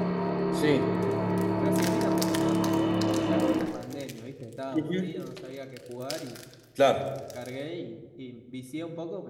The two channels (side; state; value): both; identical; correlation 1.00